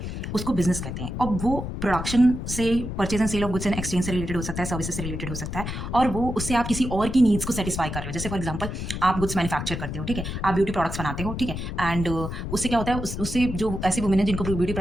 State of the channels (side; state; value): left; noise; rumble, 5 dB below the sound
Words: उसको बिजनेस कहते हैं. और वो प्रोडक्शन से, purchase and sale of goods and exchange से रिलेटेड हो सकता है, सर्विसेज से रिलेटेड हो सकता है, और वो उससे आप किसी और की नीड्स को सेटिस्फाई कर रहे हो. जैसे फॉर एग्जांपल आप गुड्स मैन्युफैक्चर करते हो, ठीक है, आप ब्यूटी प्रोडक्ट्स बनाते हो, ठीक है, एंड उससे क्या होता है? उससे जो ऐसी वुमेन है जिनको ब्यूटी